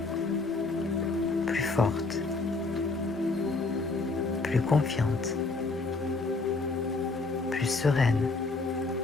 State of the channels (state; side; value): quieter; right; 3.7 dB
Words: plus forte, plus confiante, plus sereine.